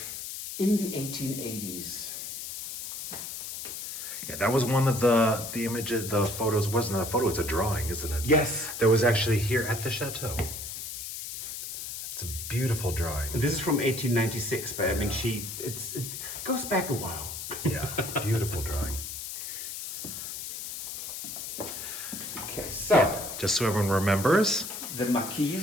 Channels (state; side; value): noise; left; hiss, 7 dB below the sound